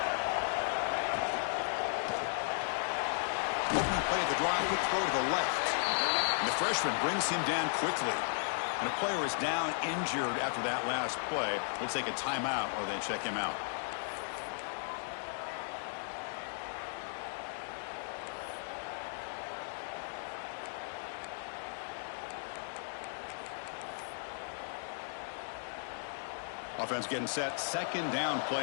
Opening play of the drive, quick throw to the left. And the freshman brings him down quickly. And a player is down injured after that last play. We'll take a timeout or they check him out. Offense getting set. Second down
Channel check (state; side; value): silent; right; digital silence